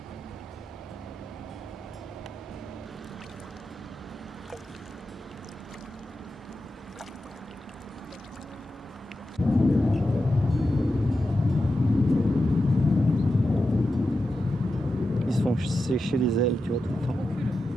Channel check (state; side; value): normal; both; correlation 0.90